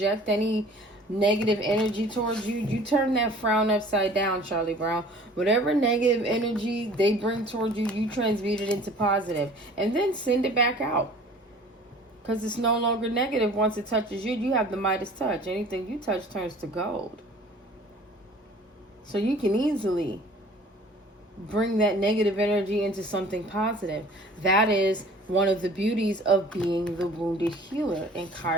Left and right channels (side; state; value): both; normal; correlation 0.48